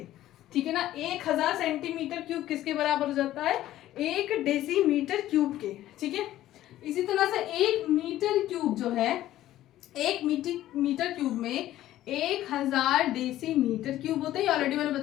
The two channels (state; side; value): quieter; right; 13.9 dB